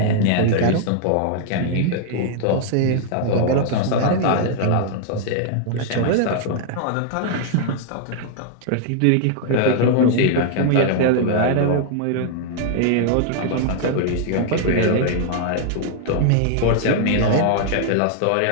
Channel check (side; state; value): both; different; correlation -0.01